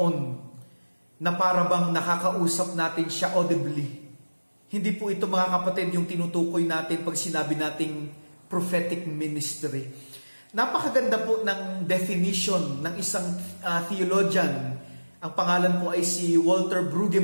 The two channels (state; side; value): inverted; both; correlation -1.00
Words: na para bang nakakausap natin siya audibly. Hindi po ito mga kapatid yung tinutukoy natin pag sinabi nating prophetic ministry. Napakaganda po ng definition ng isang theologian. Ang pangalan po ay si Walter